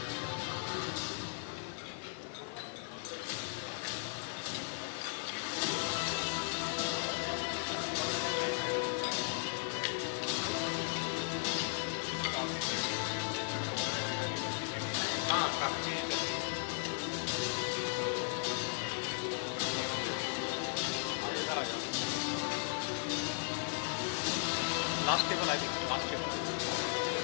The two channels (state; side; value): silent; right; digital silence